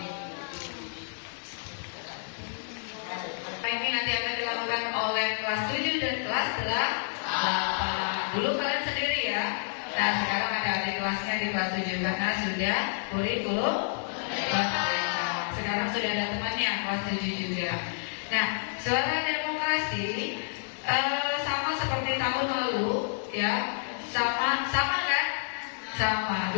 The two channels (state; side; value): silent; right; digital silence